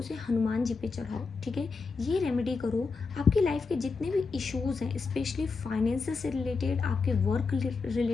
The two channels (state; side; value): quieter; right; 4.5 dB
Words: हनुमान जी पे चढ़ाओ, ठीक है। ये रेमेडी करो, आपकी लाइफ के जितने भी इश्यूज़ हैं, स्पेशली फाइनेंस से रिलेटेड, आपके वर्क